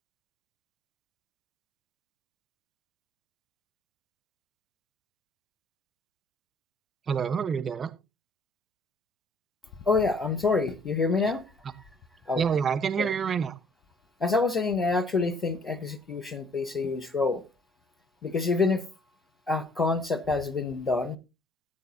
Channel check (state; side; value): normal; both; correlation 0.59